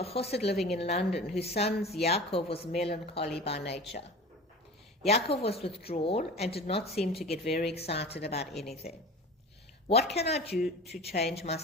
chassid living in London whose son Yaakov was melancholy by nature. Yaakov was withdrawn and did not seem to get very excited about anything. What can I do to change my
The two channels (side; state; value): both; normal; correlation 0.36